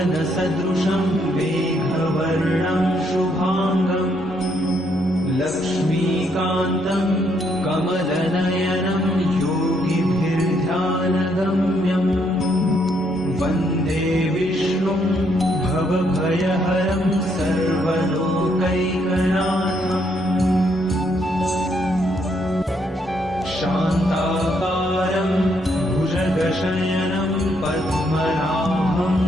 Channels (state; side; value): normal; both; correlation 0.73